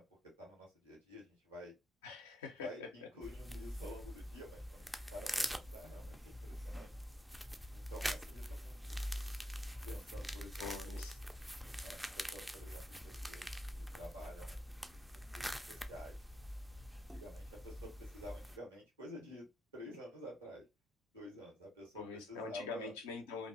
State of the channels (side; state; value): both; normal; correlation 0.82